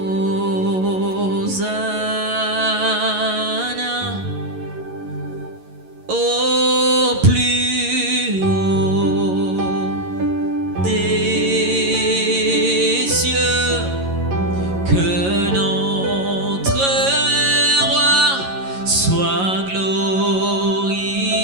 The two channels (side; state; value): left; late; 11 ms